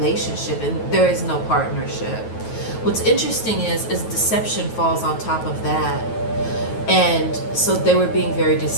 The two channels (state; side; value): late; right; 9.2 ms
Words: and there is no partnership. What's interesting is deception falls on top of that, and so they were being very